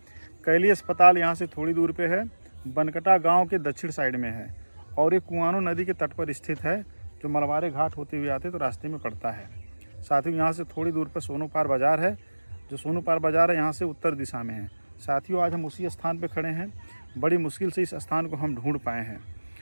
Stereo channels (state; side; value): inverted; both; correlation -1.00